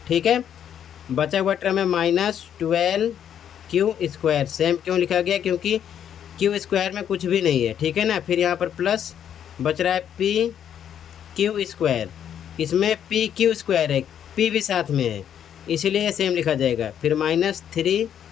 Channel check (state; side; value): quieter; right; 9.4 dB